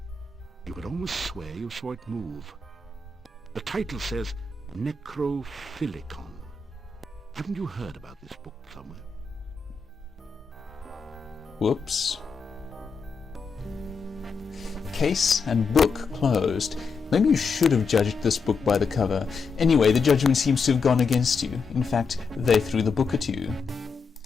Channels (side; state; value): right; quieter; 4.8 dB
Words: You could almost swear you saw it move. The title says Necrophilicon. Haven't you heard about this book somewhere? Whoops. Case and book closed. Maybe you should have judged this book by the cover. Anyway, the judgment seems to have gone against you. In fact, they threw the book at you.